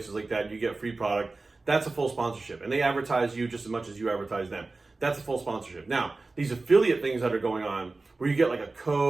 like that, you get free product, that's a full sponsorship. And they advertise you just as much as you advertise them. That's a full sponsorship. Now, these affiliate things that are going on, where you get like a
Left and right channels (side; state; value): left; quieter; 3.5 dB